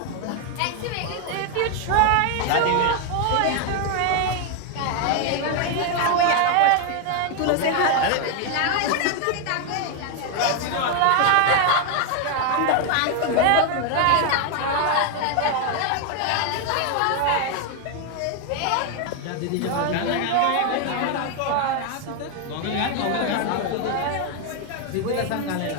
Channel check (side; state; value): both; different; correlation 0.01